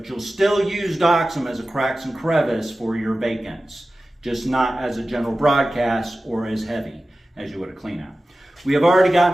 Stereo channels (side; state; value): both; normal; correlation 0.95